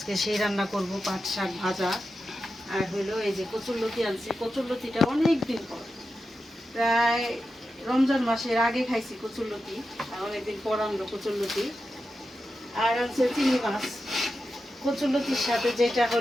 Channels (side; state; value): both; normal; correlation 0.90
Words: সেই রান্না করব। পাট শাক ভাজা আর হইলো এই যে কচুরলতি আনছি। কচুরলতিটা অনেক দিন পর, প্রায় রমজান মাসের আগে খাইছি কচুরলতি, আর অনেকদিন পর আনলো কচুরলতি। আর আনছে চিংড়ি মাছ। কচুরলতির সাথে যেটা